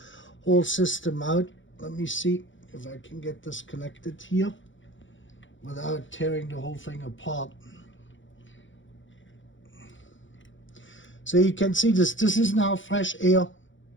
whole system out. Let me see if I can get this connected here without tearing the whole thing apart. So you can see this is now fresh air.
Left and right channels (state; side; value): late; right; 0.56 ms